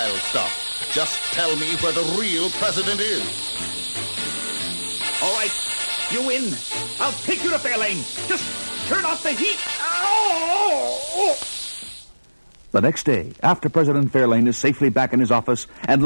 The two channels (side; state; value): both; inverted; correlation -1.00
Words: stop. Just tell me where the real president is. All right, you win. I'll take you to Fairlane. Just turn off the heat. Oh! The next day, after President Fairlane is safely back in his office and